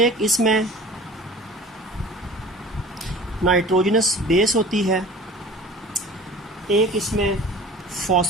इसमें नाइट्रोजनस बेस होती है, एक इसमें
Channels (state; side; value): normal; both; correlation 0.42